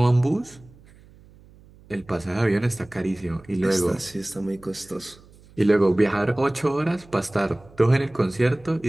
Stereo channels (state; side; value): noise; right; hum, 25 dB below the sound